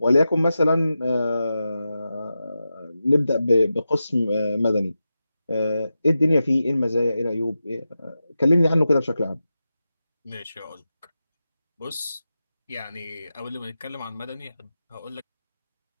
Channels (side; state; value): both; inverted; correlation -0.91